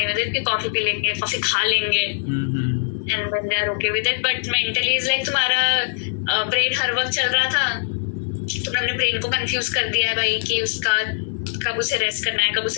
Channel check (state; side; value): silent; right; digital silence